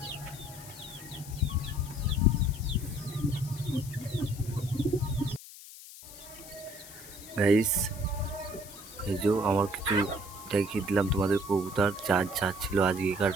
গাইস, এই যে আমার কিছু দেখিয়ে দিলাম তোমাদের কবুতর যা ছিল আজকেকার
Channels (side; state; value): left; noise; hiss, 16 dB below the sound